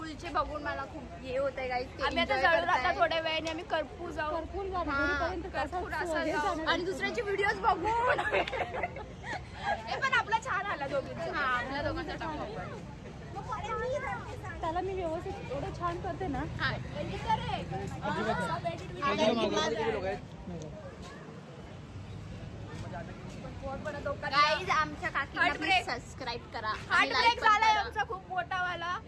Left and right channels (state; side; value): identical; both; correlation 1.00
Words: बघून मला खूप हे होतंय गाईज. आम्ही आता जळून आता थोड्या वेळाने आम्ही कर्पूर जाऊ. कर्पूर असं आणि दुसऱ्याचे व्हिडिओज बघून. हे पण आपला छान आला दोघींचा. हा आपल्या दोघांचा टाकला. त्याला मी व्यवस्थित एवढं छान करते ना. गाईज आमच्या काकीला सबस्क्राईब करा. हार्ट ब्रेक झालाय आमचा खूप मोठा वाला.